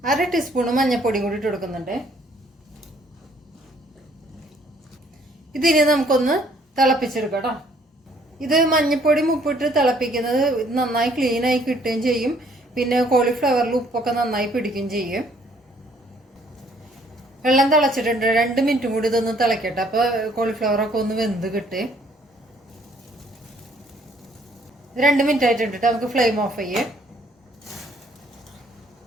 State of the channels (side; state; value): both; normal; correlation 0.63